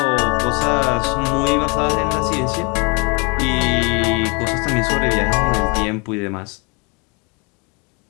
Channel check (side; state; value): right; quieter; 31.0 dB